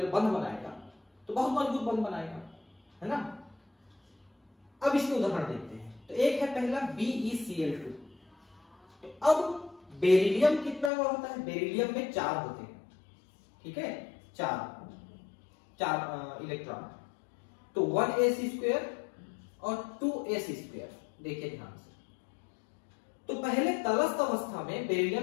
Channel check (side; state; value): right; drops out; at 10.9 s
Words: बंध बनाएगा, तो बहुत मजबूत बंध बनाएगा, है ना। अब इसके उदाहरण देखते हैं। तो एक है पहला BeCl2। तो अब बेरिलियम कितना का होता है? बेरिलियम में 4 होते हैं। ठीक है, 4 इलेक्ट्रॉन, तो 1s² और 2s²। देखिए ध्यान से, तो पहले तलस्थ अवस्था में